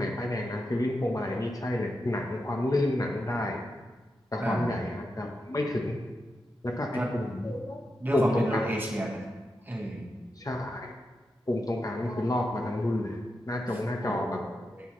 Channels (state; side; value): normal; both; correlation 0.87